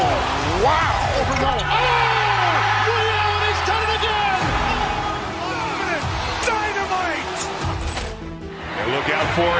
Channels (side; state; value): both; identical; correlation 1.00